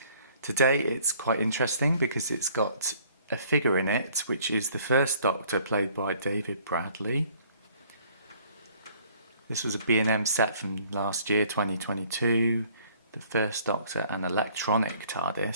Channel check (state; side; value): inverted; both; correlation -0.58